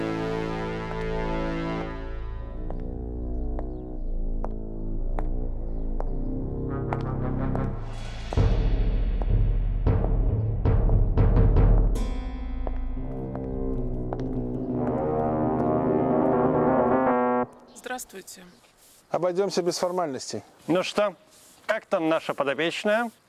Здравствуйте. Обойдемся без формальностей. Ну что, как там наша подопечная?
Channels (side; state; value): both; identical; correlation 1.00